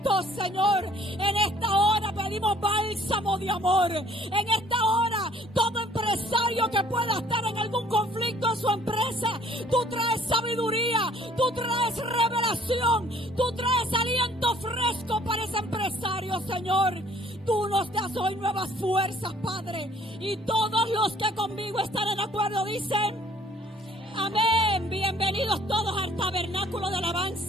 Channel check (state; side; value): normal; both; correlation 0.57